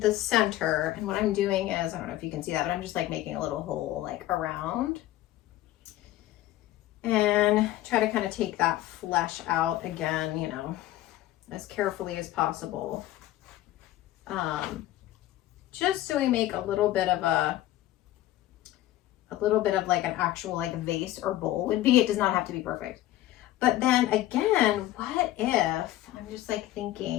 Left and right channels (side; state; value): right; quieter; 14.9 dB